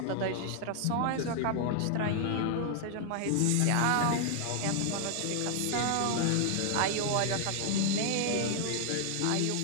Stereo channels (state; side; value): different; both; correlation 0.00